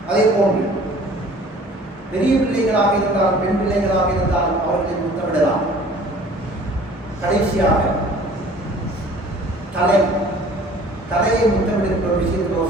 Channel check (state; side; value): normal; both; correlation 0.49